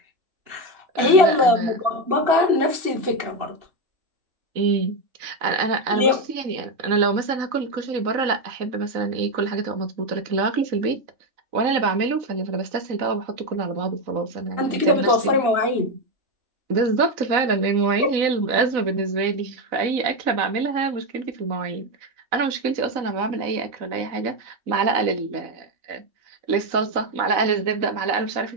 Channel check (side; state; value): left; late; 3.9 ms